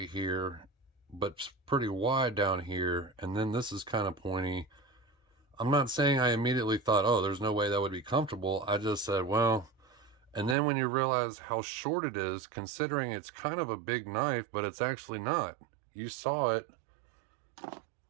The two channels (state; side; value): drops out; left; at 10.6 s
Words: here, but pretty wide down here, and then this is kind of pointy. I'm not saying I immediately thought, oh, there's no way that would be comfortable. I just said, well, and then when you realize how short it is, considering it's kind of a big knife, but it's actually not. You saw it.